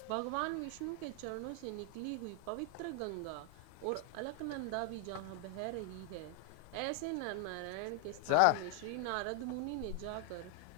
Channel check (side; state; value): both; different; correlation 0.01